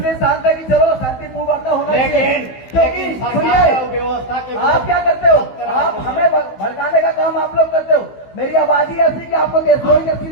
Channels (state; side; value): late; right; 16 ms